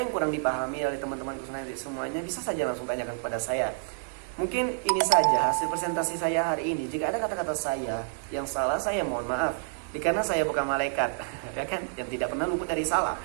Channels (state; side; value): silent; left; 59 dB below the other